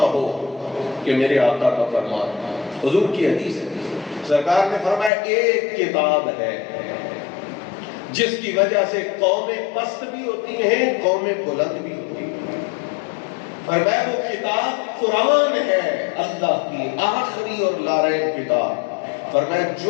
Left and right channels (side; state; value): right; drops out; at 5.1 s